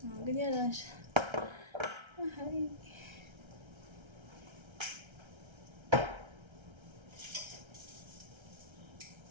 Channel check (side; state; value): left; late; 1.3 ms